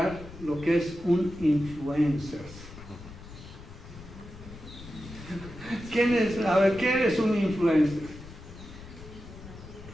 lo que es un influencer? ¿Qué es un influencer?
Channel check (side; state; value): left; noise; rumble, 15 dB below the sound